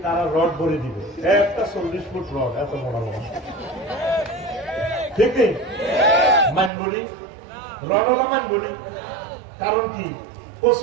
তারা রড ভরে দিব, একটা 40 ফুট রড এত বড় বড়, ঠিক নেই মানবনি রড হলো মানবনি, কারণ কি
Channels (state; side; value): drops out; left; at 6.7 s